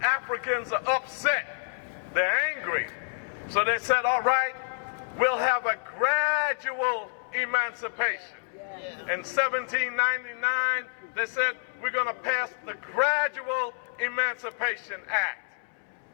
are upset. They're angry. So they said, all right, we'll have a gradual emancipation. In 1799, they said, we're going to pass the Gradual Emancipation Act.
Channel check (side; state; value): right; silent; 59 dB below the other